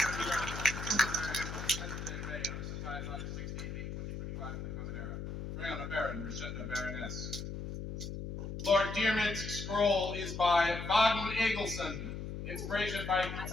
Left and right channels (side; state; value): left; noise; hum, 6 dB below the sound